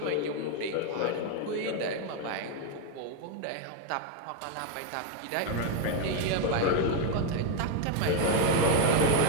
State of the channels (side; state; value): both; different; correlation 0.01